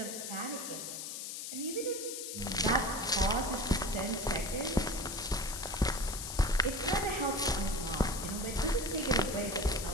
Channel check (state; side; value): noise; left; hiss, 6 dB below the sound